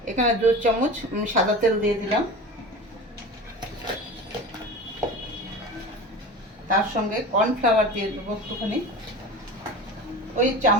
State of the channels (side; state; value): both; normal; correlation 0.33